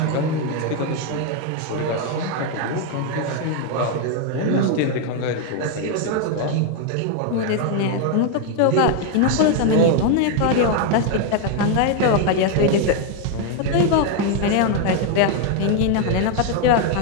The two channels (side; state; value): both; different; correlation 0.01